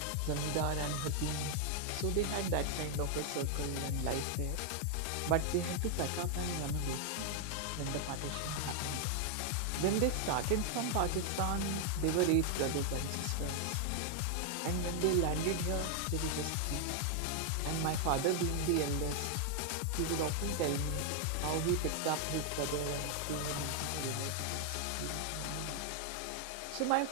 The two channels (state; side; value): different; both; correlation 0.00